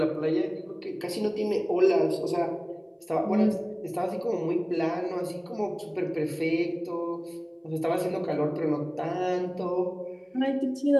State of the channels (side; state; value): both; identical; correlation 1.00